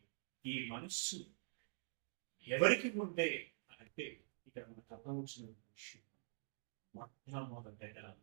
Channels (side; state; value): left; silent; digital silence